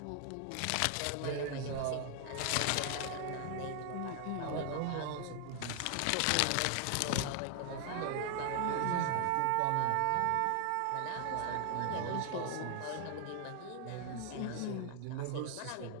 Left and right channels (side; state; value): both; different; correlation 0.00